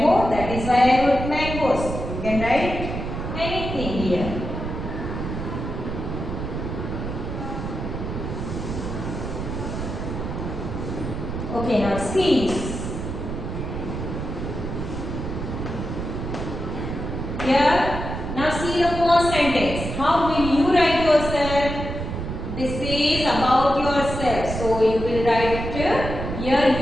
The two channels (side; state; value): right; noise; rumble, 5 dB below the sound